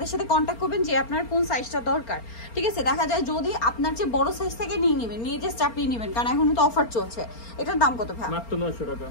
সাথে কন্ট্যাক্ট করবেন যে আপনার কোন সাইজটা দরকার। ঠিক আছে, দেখা যায় যদি আপনার যে বড় সাইজ থেকে নিয়ে নেবেন, নিয়ে জাস্ট চাপিয়ে নেবেন, কারণ এখন তো অফার চলছে। এটার দাম কত ভাই? মাত্র 900 টাকা।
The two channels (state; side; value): late; right; 4.3 ms